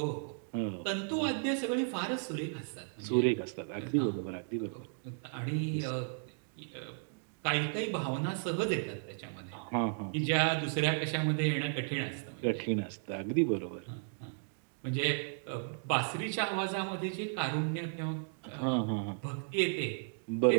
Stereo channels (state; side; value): silent; left; digital silence